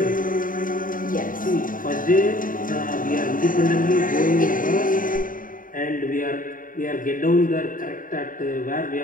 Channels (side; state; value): right; late; 0.39 ms